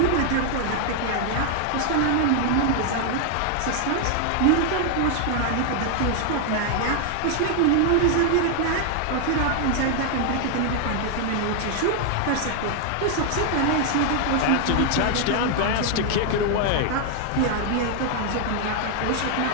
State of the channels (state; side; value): different; both; correlation 0.00